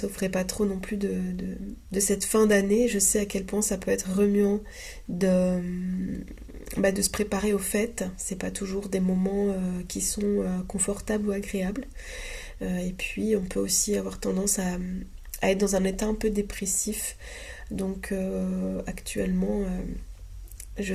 pas trop non plus de cette fin d'année. Je sais à quel point ça peut être remuant de, de se préparer aux fêtes. C'est pas toujours des moments qui sont confortables ou agréables. Et puis on peut aussi avoir tendance à être dans un état un peu dépressif. Donc actuellement, je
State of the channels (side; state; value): both; identical; correlation 1.00